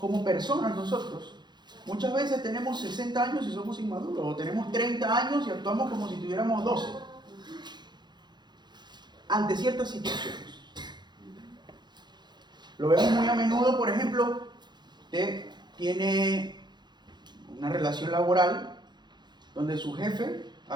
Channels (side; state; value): left; late; 0.21 ms